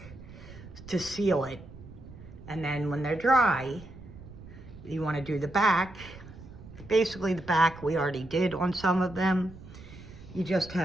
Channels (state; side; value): noise; right; rumble, 17 dB below the sound